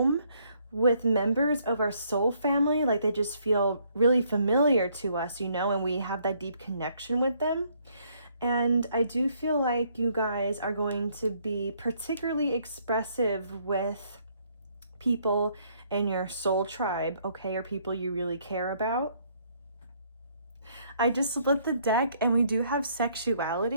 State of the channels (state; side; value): inverted; both; correlation -0.67